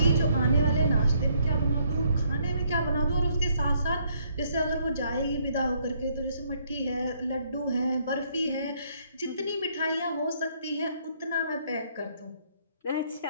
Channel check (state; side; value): inverted; both; correlation -0.68